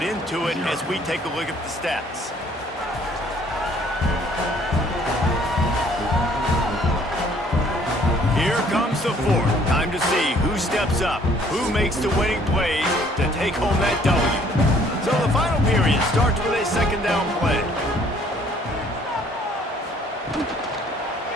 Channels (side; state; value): both; normal; correlation 0.60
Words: into it as we take a look at the stats. Here comes the fourth. Time to see who steps up, who makes the winning plays to take home that W. So the final period starts with a second down play.